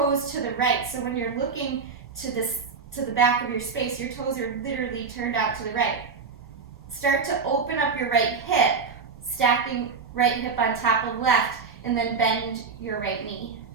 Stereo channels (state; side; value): quieter; left; 5.2 dB